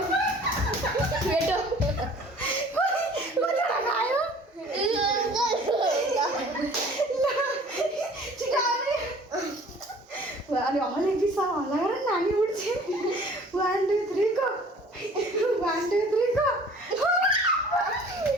बेटो कतिवटा खायो अनि हले पिसा हल्ला गर नानी उठ्छ। 1 2 3 गो 1 2 3 गो।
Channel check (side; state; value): both; normal; correlation 0.50